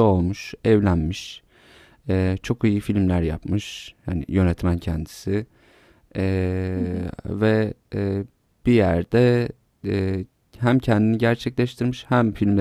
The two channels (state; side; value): identical; both; correlation 1.00